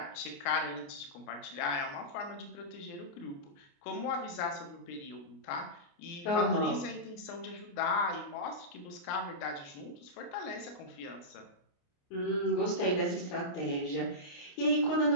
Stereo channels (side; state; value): right; late; 29 ms